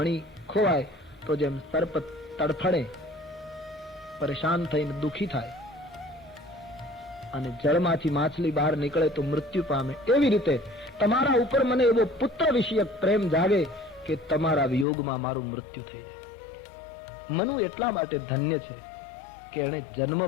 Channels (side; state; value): right; drops out; at 14.9 s